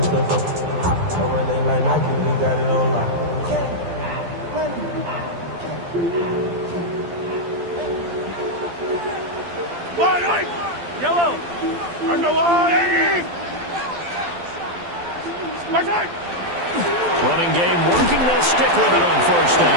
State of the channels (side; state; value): left; late; 12 ms